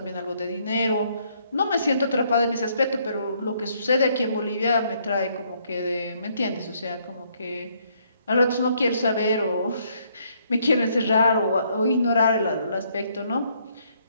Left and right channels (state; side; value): inverted; both; correlation -0.69